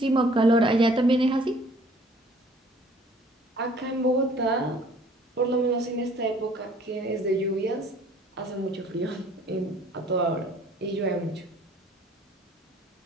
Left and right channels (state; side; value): normal; both; correlation 0.55